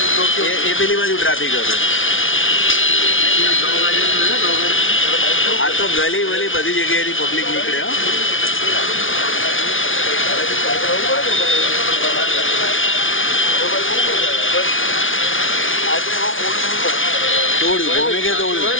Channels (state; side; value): late; right; 0.57 ms